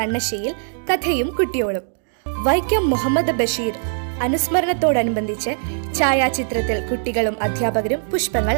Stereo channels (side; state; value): left; silent; digital silence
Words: കഥയും കുട്ടിയോളും. വൈക്കം മുഹമ്മദ് ബഷീർ അനുസ്മരണത്തോടനുബന്ധിച്ച് ഛായാചിത്രത്തിൽ കുട്ടികളും അധ്യാപകരും പുഷ്പങ്ങൾ